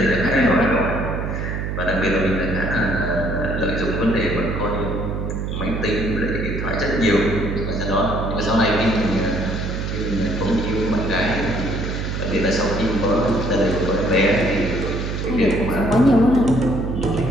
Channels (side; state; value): right; noise; hum, 3 dB below the sound